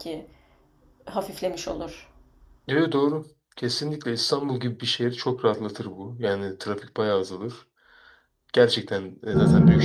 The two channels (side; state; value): both; identical; correlation 1.00